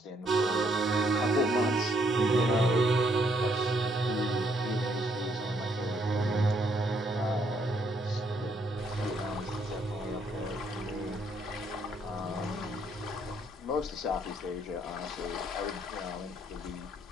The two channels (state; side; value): normal; both; correlation 0.71